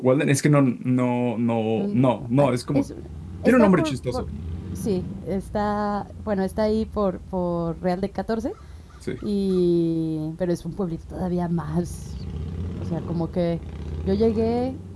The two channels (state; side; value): identical; both; correlation 1.00